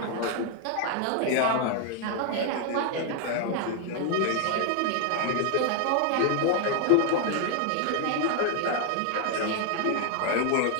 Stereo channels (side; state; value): both; different; correlation 0.00